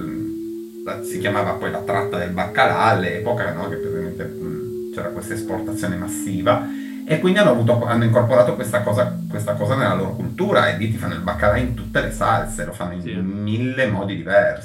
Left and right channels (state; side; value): identical; both; correlation 1.00